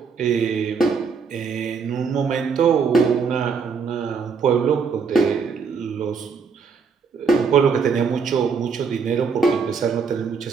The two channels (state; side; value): quieter; left; 5.6 dB